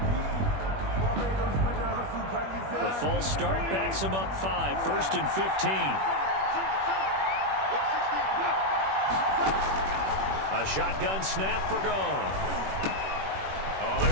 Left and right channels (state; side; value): late; left; 21 ms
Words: The false start backs him up 5, 1st and 15. A shotgun snap for gone. Oh,